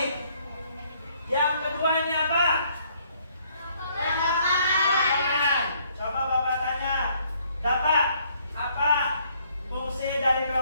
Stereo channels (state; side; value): inverted; both; correlation -0.66